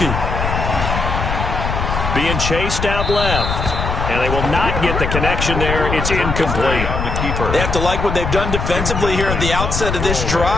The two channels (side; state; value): left; noise; rumble, 3 dB below the sound